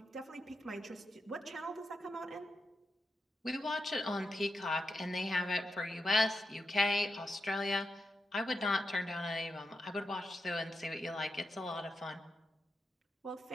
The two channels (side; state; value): both; normal; correlation 0.87